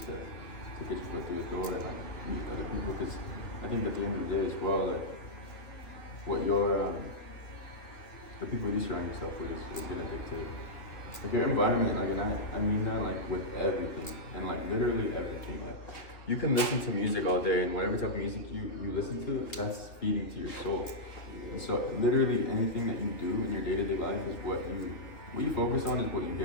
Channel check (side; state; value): right; late; 2.9 ms